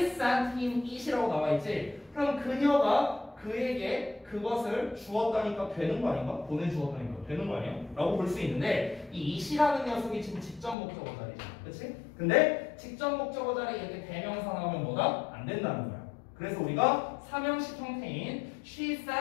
sent him it이라고 나와 있지. 그럼 그녀가 그에게 그것을 주었다니까 되는 거 아닌가? 보내주었다니까 되는 거 아니야? 라고 볼 수 있는데 이 it이라는 녀석이 지금 직접 목적어 자리잖아. 그치? 근데 직접 목적어 자리에 이렇게 대명사 나오면 뭐다? 안 된다는 거야. 그래서 우리가 3형식 형태인 she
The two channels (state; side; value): drops out; right; at 10.8 s